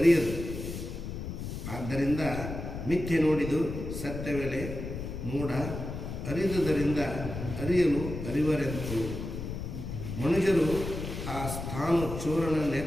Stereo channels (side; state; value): left; noise; rumble, 7 dB below the sound